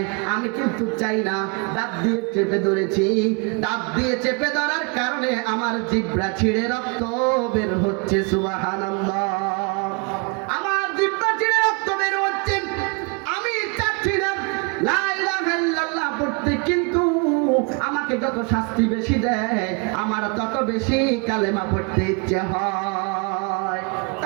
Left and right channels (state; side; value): quieter; left; 32.9 dB